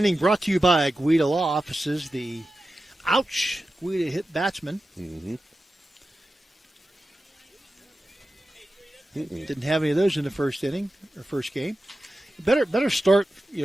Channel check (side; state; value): both; normal; correlation 0.93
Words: brought to you by Guida Law Offices, the Guida hit batsman. Mm-hmm. Didn't have any of those in the first inning, or first game. Better start.